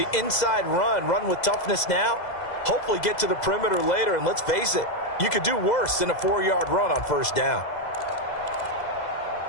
inside run with toughness now, hopefully get to the perimeter later. And let's face it, you could do worse than a 4-yard run on first down.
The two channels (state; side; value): late; right; 2.0 ms